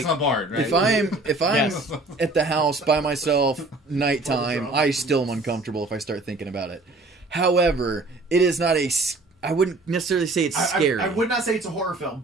a bard, right? if I'm Yes. at the house by myself nighttime, I still am uncomfortable if I start thinking about it. However, it is not I wouldn't necessarily say it's scary. I would not say it's a horror film,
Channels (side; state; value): left; quieter; 3.0 dB